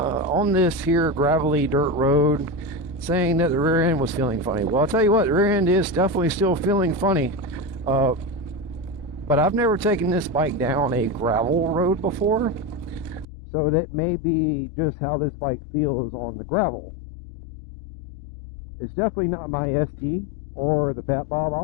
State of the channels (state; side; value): drops out; right; at 13.2 s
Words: this here gravelly dirt road, saying that the rear end was feeling funny. Well, I'll tell you what, the rear end is definitely still feeling funny. But I've never taken this bike down a gravel road before, so that may be just how this bike feels on the gravel. It's definitely not my ST or the Fat Bob.